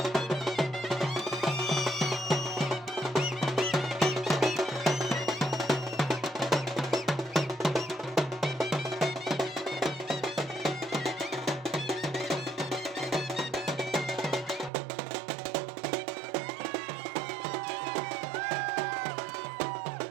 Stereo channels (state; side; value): drops out; left; at 14.7 s